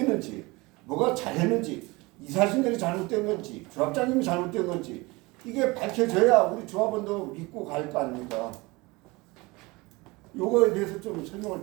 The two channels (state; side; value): quieter; left; 23.6 dB